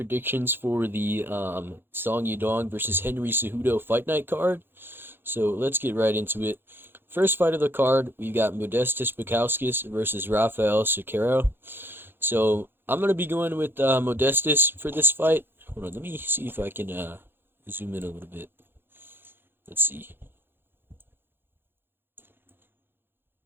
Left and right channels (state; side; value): late; left; 0.10 ms